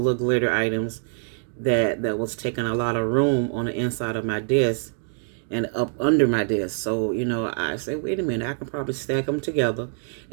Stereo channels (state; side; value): silent; left; digital silence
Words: little glitter items that was taking a lot of room on the inside of my desk and up under my desk. So, I say, wait a minute, I can probably stack them together.